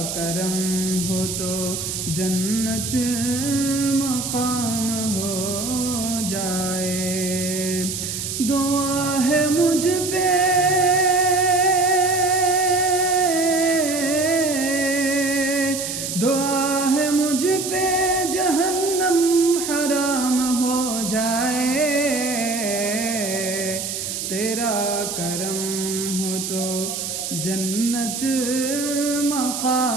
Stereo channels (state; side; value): noise; right; hiss, 4 dB below the sound